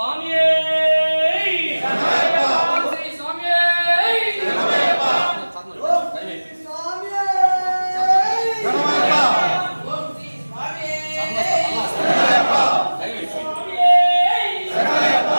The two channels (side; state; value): both; inverted; correlation -1.00